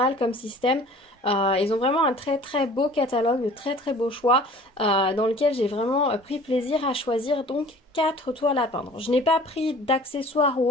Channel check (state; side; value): normal; both; correlation 0.47